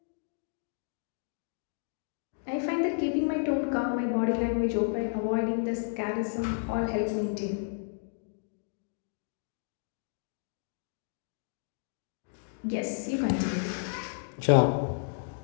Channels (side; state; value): right; silent; digital silence